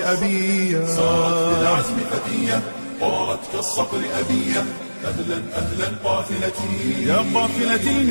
أبية. سارت بالعزم فتية طارت كالصقر أبية. أهلا أهلا قافلتي يا قافلتي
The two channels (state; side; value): inverted; both; correlation -1.00